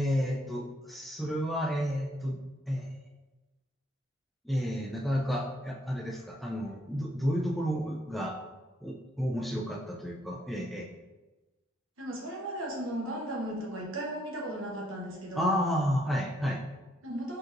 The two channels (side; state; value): both; normal; correlation 0.72